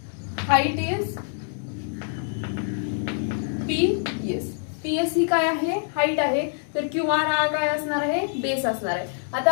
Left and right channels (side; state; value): right; silent; digital silence